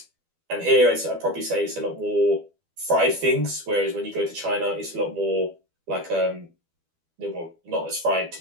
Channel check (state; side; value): late; left; 12 ms